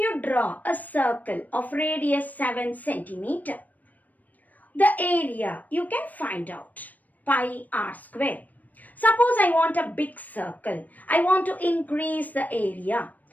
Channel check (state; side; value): late; right; 0.080 ms